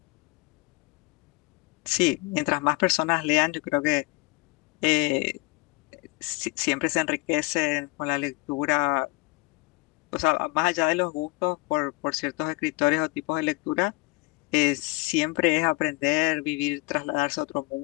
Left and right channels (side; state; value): right; quieter; 25.8 dB